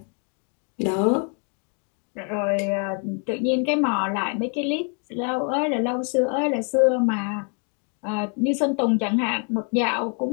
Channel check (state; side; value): quieter; right; 39.3 dB